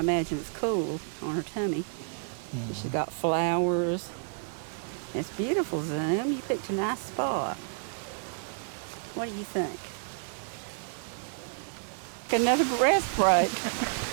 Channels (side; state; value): left; silent; 58 dB below the other